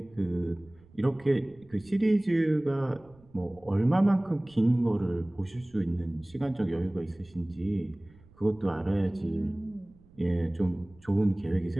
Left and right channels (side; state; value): right; noise; rumble, 27 dB below the sound